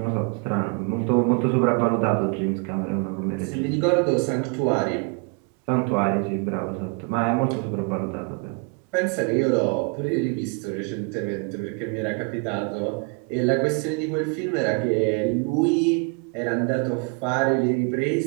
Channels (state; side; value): quieter; left; 34.6 dB